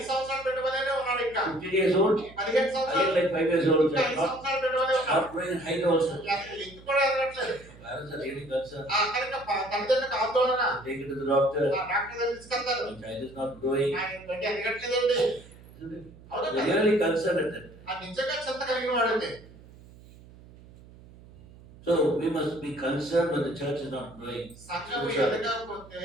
సంవత్సరాల బిడ్డ వలెనే ఉన్నాడు ఇంకా. 15 years old, 15 సంవత్సరాలు again like 5 years old ఇంకా 5 child. Not, సంవత్సరాల బిడ్డ వలె ఉన్నాడు. not growing in height also. అసలు ఎత్తు కూడా ఎదగట్లేదు. Parents are really concerned. కనుక తల్లిదండ్రులకు ఆందోళన. Take it to the doctor. Doctor దగ్గర తీసుకెళ్తారు. The child is not growing. ఆయన బిడ్డ ఎదగట్లేదండి. Isn't it? అవునా They are కదా? really concerned at that. నిజంగా చింత కలిగిన వాడైతే. So we must be concerned when the church is not growing. సంఘము ఎదగకపోతే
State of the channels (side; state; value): right; noise; hum, 21 dB below the sound